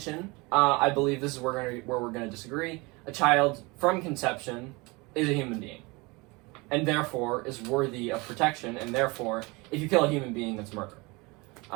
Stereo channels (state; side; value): quieter; left; 25.7 dB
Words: I believe this is where we're going to disagree. A child from conception is a human being, and therefore is worthy of protection, and therefore, if you kill a human being, that's murder.